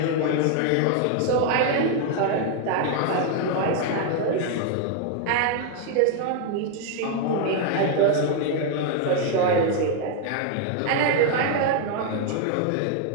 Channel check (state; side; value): different; both; correlation 0.00